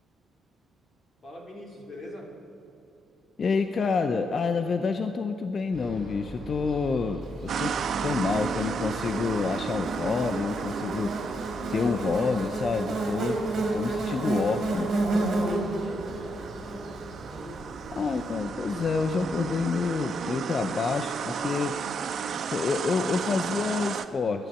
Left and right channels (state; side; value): normal; both; correlation 0.79